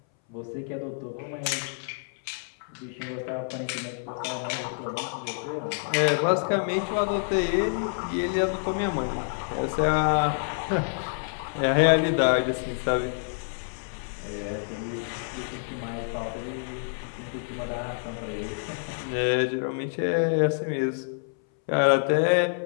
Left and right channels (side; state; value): right; silent; 60 dB below the other